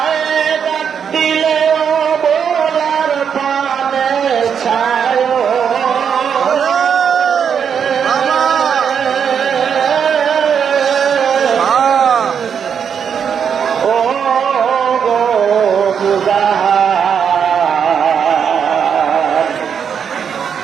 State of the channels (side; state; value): left; quieter; 7.4 dB